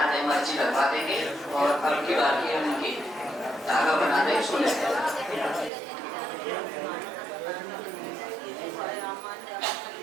है, मर्जी लगवा देंगे और अब की बाकी है उनकी धागा बना देंगे, सो लेते हैं।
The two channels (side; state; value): left; drops out; at 5.7 s